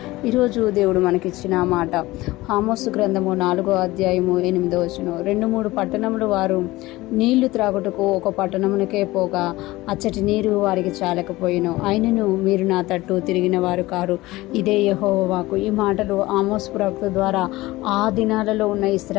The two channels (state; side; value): quieter; right; 19.1 dB